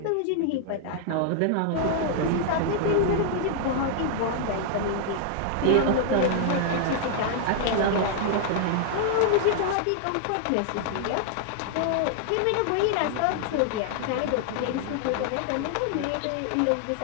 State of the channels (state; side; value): different; both; correlation -0.01